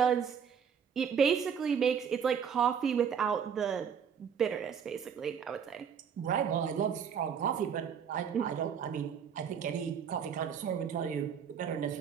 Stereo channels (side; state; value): left; quieter; 7.4 dB